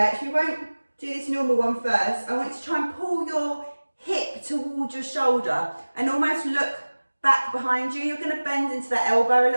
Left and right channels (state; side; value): inverted; both; correlation -1.00